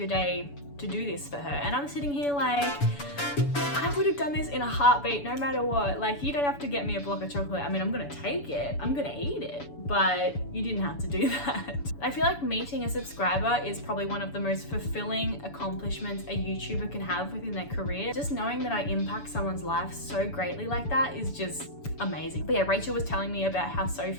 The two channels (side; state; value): right; late; 7.0 ms